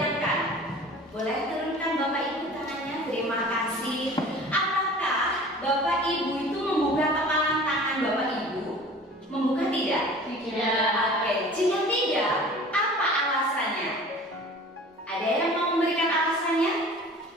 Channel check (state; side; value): normal; both; correlation 0.43